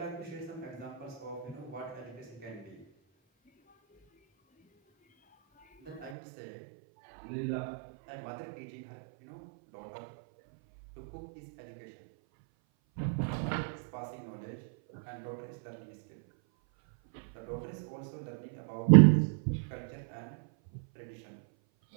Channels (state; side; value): drops out; left; at 6.1 s